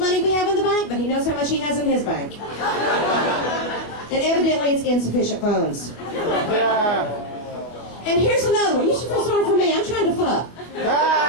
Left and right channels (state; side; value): late; right; 24 ms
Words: we have in the bank, but he knows how much he has in his bank. And evidently it's insufficient funds. Yeah. And here's another one. You should feel sorry for me. I'm trying to fuck.